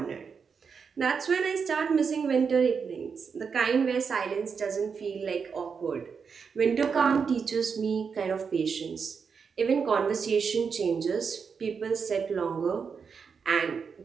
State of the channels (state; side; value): quieter; left; 5.9 dB